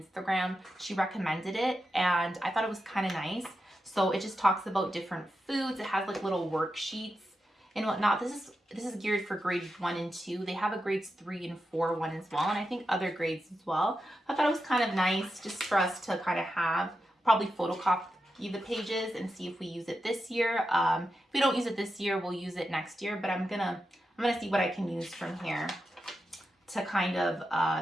she recommended it, and I thought it was kind of nice. So it just talks about different foods. It has like little worksheets and whatnot. This is geared for grades 1 and 2. They have a grades 3 and 4 one as well, and I think other grades as well. I thought it was kind of nice just for us to kind of have, probably photocopy the pages and see if we use it this year. If we don't use it this year, we'll use it next year, but I'm gonna see what I can use from here to kind of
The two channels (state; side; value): normal; both; correlation 0.89